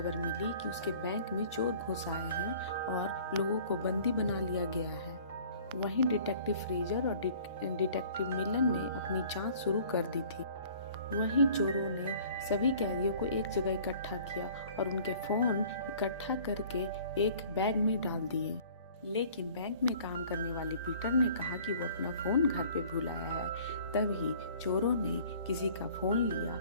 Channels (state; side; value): inverted; both; correlation -0.51